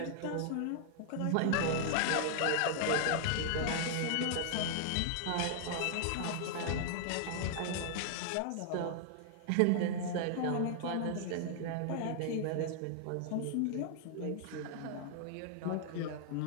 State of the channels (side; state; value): both; different; correlation -0.01